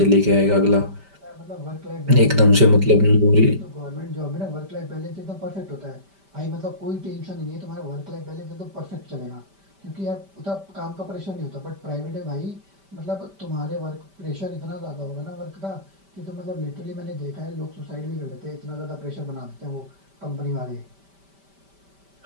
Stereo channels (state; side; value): late; left; 5.1 ms